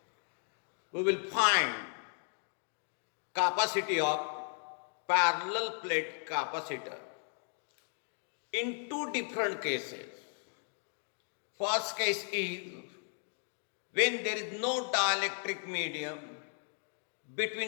we will find capacity of parallel plate capacitor in two different cases. First case is when there is no dielectric medium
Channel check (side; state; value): right; silent; 54 dB below the other